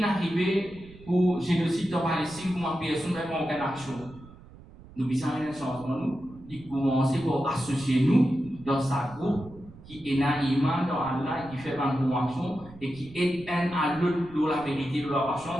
pour génocide en Palestine pour une personne avec aucune action. Nous besoin un changement, nous, de commencer par associer nous dans sa groupe qui est un iman dans Allah, qui fait une bonne action et qui aide un à l'autre dans la vérité, dans la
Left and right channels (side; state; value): right; noise; rumble, 20 dB below the sound